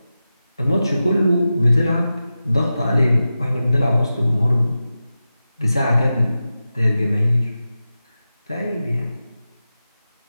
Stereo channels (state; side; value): inverted; both; correlation -0.93